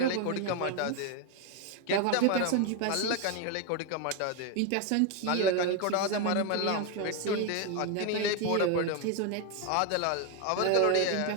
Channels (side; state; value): both; different; correlation 0.01